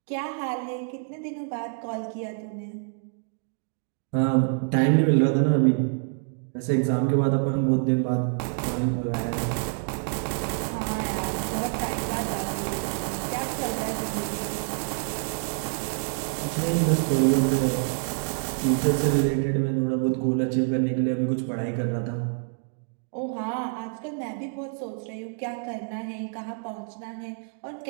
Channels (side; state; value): left; silent; 58 dB below the other